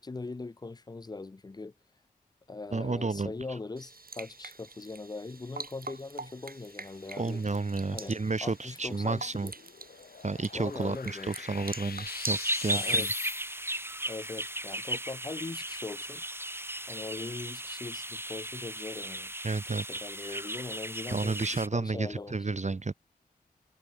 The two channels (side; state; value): both; normal; correlation 0.33